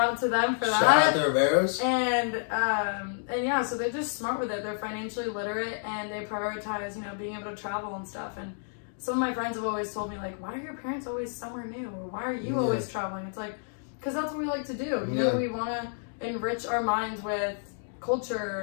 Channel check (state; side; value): silent; right; digital silence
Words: to them for Shout out that. the Riveros. And yeah, so they're just smart with it. They're financially literate, and they prioritize, you know, being able to travel and stuff. And some of my friends have always told me, like, why are your parents always somewhere new? Or why are you always traveling? It's like, because that's what we like to do. You know, we want to enrich our minds with